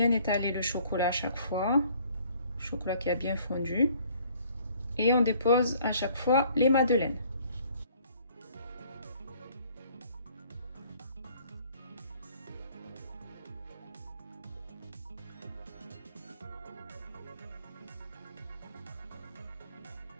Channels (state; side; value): inverted; both; correlation -0.58